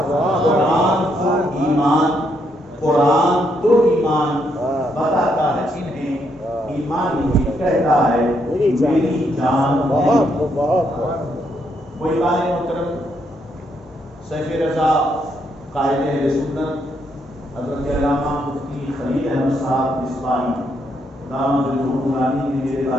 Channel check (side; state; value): both; normal; correlation 0.76